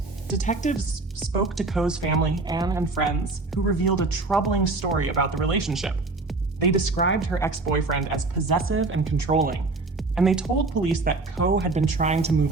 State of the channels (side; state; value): left; quieter; 3.4 dB